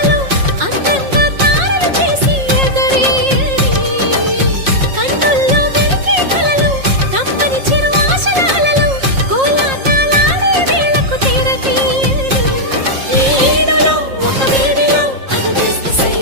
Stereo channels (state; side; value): late; left; 5.6 ms